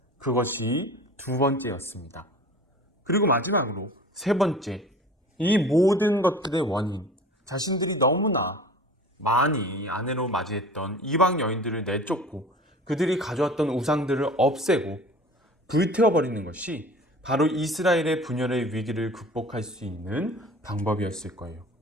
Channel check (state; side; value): normal; both; correlation 0.42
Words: 그것이 두 번째였습니다. 그리고 마지막으로 세 번째, 이 모든 것들의 원인, 자신들이 너무나 많이 아내로 맞이했던 이방 여인들을 내쫓고 그들이 가져왔던 우상들을 없애고 불태워버리는 것이 바로 이스라엘의 분열의 위기를 극복할 수 있는 방법이었을 거예요.